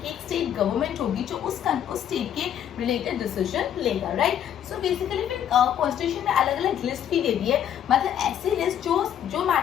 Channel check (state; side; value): quieter; right; 9.9 dB